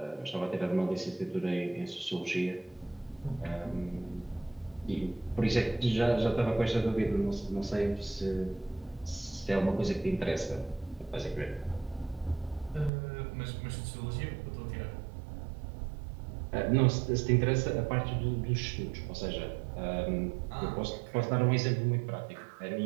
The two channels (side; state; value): left; drops out; at 12.9 s